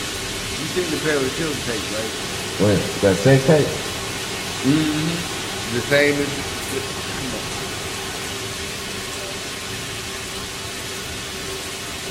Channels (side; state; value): both; identical; correlation 1.00